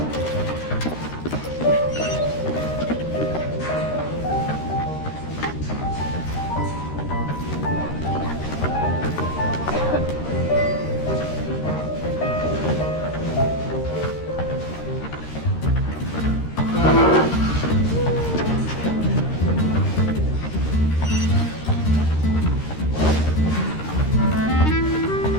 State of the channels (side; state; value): right; late; 13 ms